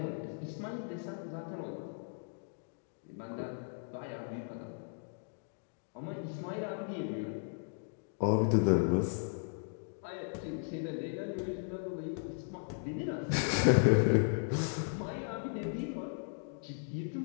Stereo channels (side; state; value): right; silent; digital silence